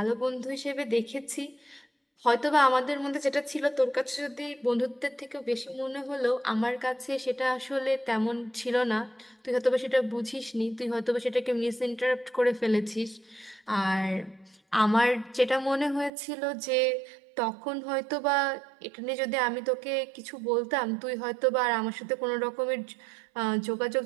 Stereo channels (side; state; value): left; drops out; at 16.1 s